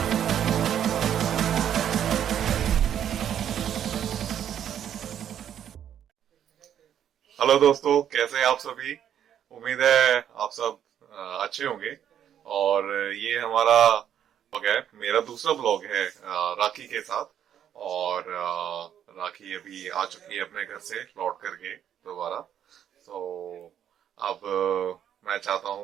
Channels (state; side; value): quieter; left; 9.7 dB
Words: दोस्तों, कैसे हैं आप सभी। उम्मीद है आप सब अच्छे होंगे। और ये हमारा ब्लॉग है, मेरा दूसरा ब्लॉग है राखी के साथ। और राखी अभी आ चुकी है अपने घर से लौट करके दोबारा। तो अब मैं चाहता